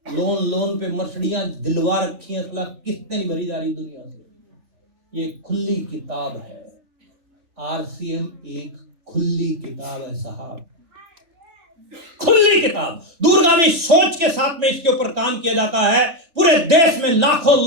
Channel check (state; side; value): late; left; 3.4 ms